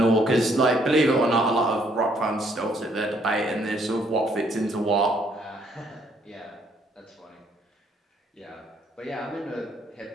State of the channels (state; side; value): normal; both; correlation 0.67